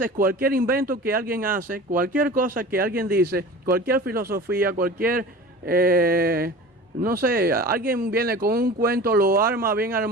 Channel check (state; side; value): normal; both; correlation 0.37